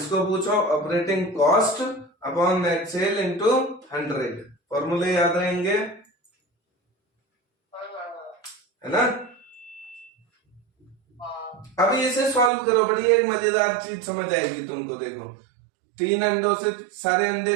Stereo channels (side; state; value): left; drops out; at 12.5 s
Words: पूछो operating cost upon net cell into 100, फॉर्मूले याद रहेंगे, है ना। अब इसे सॉल्व करो, बड़ी एक मजेदार चीज समझ आएगी तुमको। देखो 3 अंडों से सारे अंडे